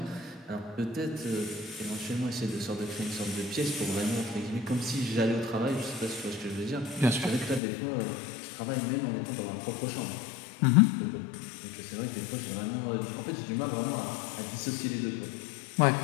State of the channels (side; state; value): right; drops out; at 7.6 s